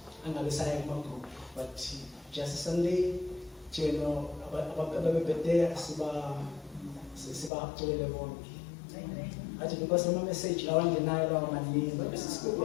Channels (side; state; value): right; drops out; at 7.5 s